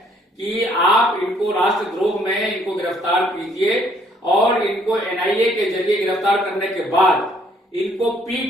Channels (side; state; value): both; normal; correlation 0.64